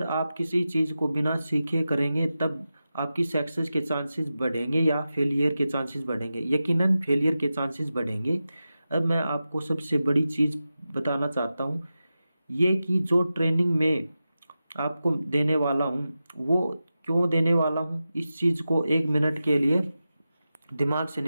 आप किसी चीज़ को बिना सीखे करेंगे तब आपकी सक्सेस के चांसेस बढ़ेंगे या फेलियर के चांसेस बढ़ेंगे? यकीनन फेलियर के चांसेस बढ़ेंगे। अब मैं आपको सबसे बड़ी चीज़ बताना चाहता हूँ, ये कि जो ट्रेनिंग में आपको देने वाला हूँ वो क्यों देने वाला हूँ, इस चीज़ को 1 मिनट के लिए दिमाग से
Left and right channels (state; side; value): inverted; both; correlation -0.92